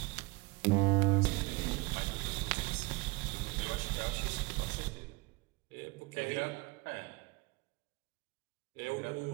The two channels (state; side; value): quieter; left; 25.4 dB